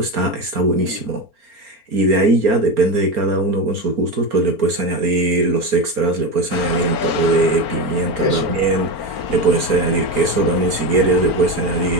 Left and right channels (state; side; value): late; left; 4.4 ms